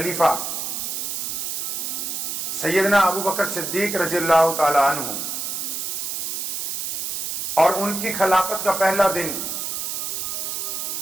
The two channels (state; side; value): noise; right; hiss, 3 dB below the sound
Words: سیدنا ابو بکر صدیق رضی اللہ تعالی عنہ اور ان کی خلافت کا پہلا دن